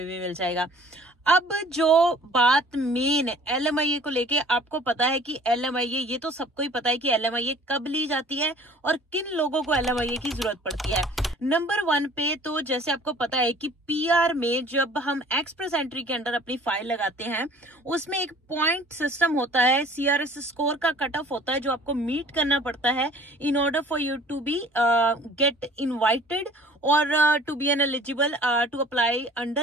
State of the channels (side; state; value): both; normal; correlation 0.50